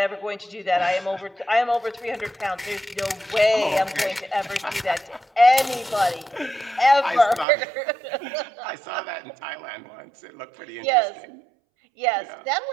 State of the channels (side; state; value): left; drops out; at 7.5 s